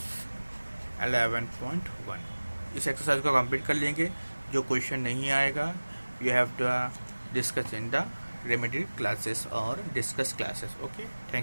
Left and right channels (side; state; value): both; inverted; correlation -1.00